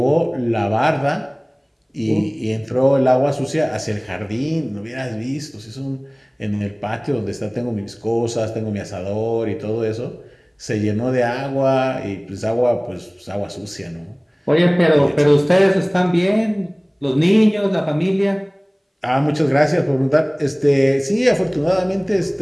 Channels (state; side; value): identical; both; correlation 1.00